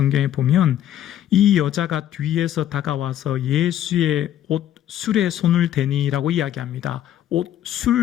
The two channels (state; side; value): quieter; right; 11.5 dB